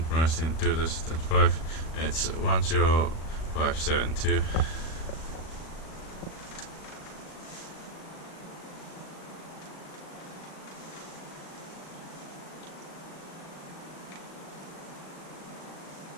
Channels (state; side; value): late; right; 38 ms